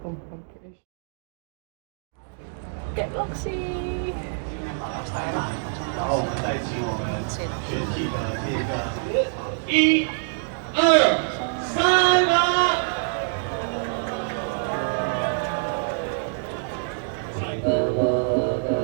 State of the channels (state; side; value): silent; left; digital silence